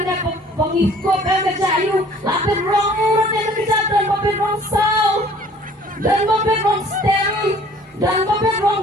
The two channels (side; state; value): both; normal; correlation 0.53